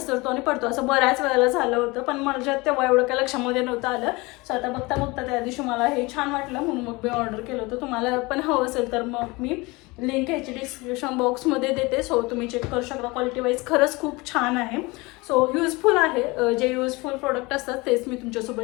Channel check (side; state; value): right; quieter; 24.0 dB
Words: आणि पडतो. असं बऱ्याच वेळेला झालं होतं, पण माझ्या तेव्हा एवढं काय लक्षामध्ये नव्हतं आलं. सो आता बघता त्या दिवशी मला हे छान वाटलं म्हणून मग मी ऑर्डर केलं होतं. तुम्हाला पण हवं असेल तर मग मी लिंक ह्याची डिस्क्रिप्शन बॉक्समध्ये देते. सो तुम्ही चेक करू शकता. क्वालिटी वाईज खरंच खूप छान आहे. सो युजफुल आहे. जे युजफुल प्रोडक्ट असतात तेच मी